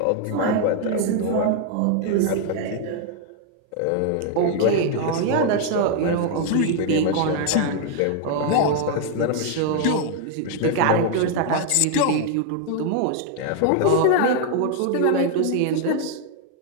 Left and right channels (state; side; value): different; both; correlation 0.00